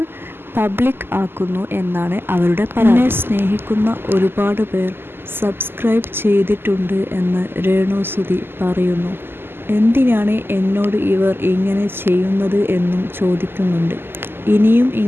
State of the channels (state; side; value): late; left; 0.11 ms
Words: പബ്ലിക് ആക്കുന്നു എന്നാണ് അവരുടെ പരാതി. സ്നേഹിക്കുന്ന ഒരുപാട് പേർ സബ്സ്ക്രൈബ് ചെയ്തിട്ടുണ്ട് എന്ന് രേണു സുധി പറയുന്നു. എന്തിനാണ് എന്നോട് ഇവർ ഇങ്ങനെ ചെയ്യുന്നത് എന്നും ചോദിക്കുന്നുണ്ട്. ഇനിയും